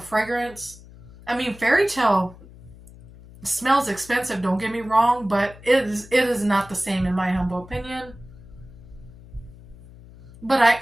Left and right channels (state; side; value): noise; left; hum, 20 dB below the sound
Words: fragrance. I mean, Fairy Tale smells expensive, don't get me wrong, but it is not the same in my humble opinion. But I